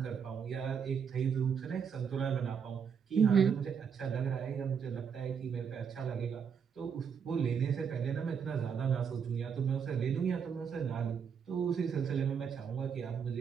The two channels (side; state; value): left; quieter; 6.9 dB